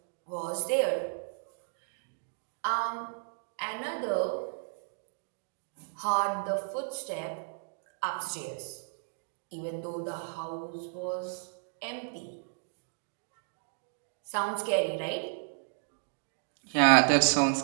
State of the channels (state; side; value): silent; left; digital silence